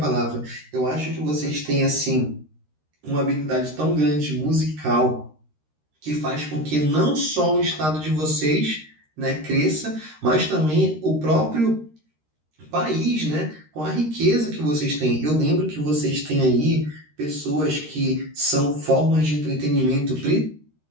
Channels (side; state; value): left; late; 13 ms